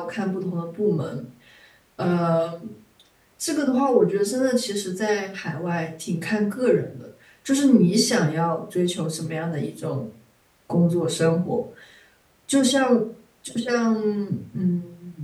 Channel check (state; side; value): identical; both; correlation 1.00